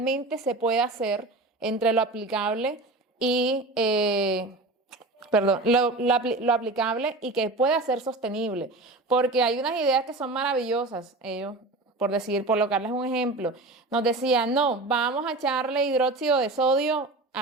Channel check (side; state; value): left; quieter; 3.0 dB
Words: se puede hacer, entre lo aplicable y, lo aplicable y que pueda ser sostenible, porque hay unas ideas que son maravillosas, ellos por colocarles un ejemplo, nos decían, no, vamos a echarle hidróxido de sodio